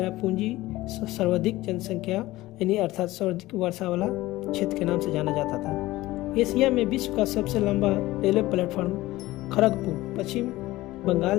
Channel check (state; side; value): quieter; right; 17.8 dB